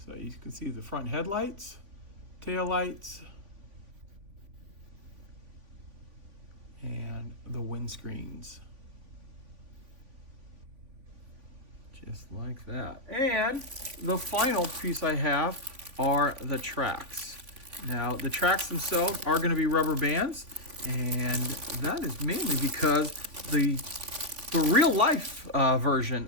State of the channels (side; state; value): left; late; 3.5 ms